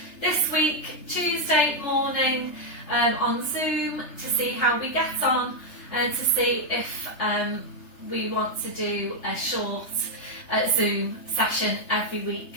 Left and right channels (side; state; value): right; late; 3.3 ms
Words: this week, Tuesday morning on Zoom, to see how we get on and to see if we want to do a short Zoom session every week.